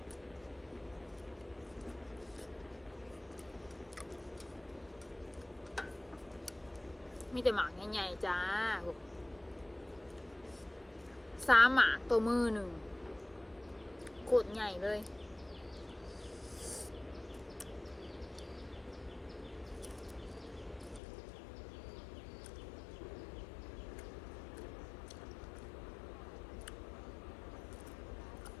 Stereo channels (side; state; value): right; drops out; at 21.0 s